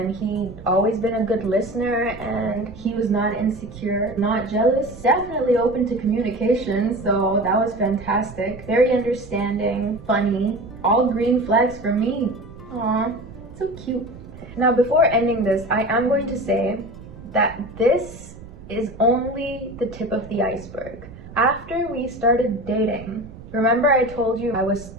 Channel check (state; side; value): noise; right; rumble, 17 dB below the sound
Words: he'd always been a good listener, and he was not insecure, not jealous, definitely open to communication, so that was fantastic. Very understanding, funny, all green flags for me. Aw, so cute. Now, before ending this, I am going to say that this is only the tip of the iceberg. After we started dating, remember I told you I was